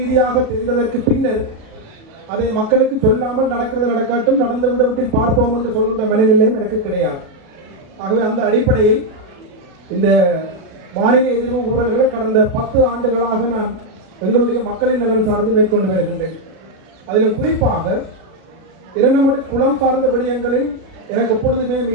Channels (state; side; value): late; left; 38 ms